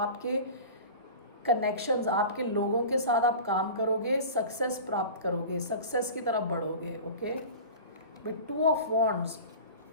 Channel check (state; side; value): inverted; both; correlation -0.35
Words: कनेक्शंस, आपके लोगों के साथ आप काम करोगे, सक्सेस प्राप्त करोगे, सक्सेस की तरफ बढ़ोगे, okay. With two of wands,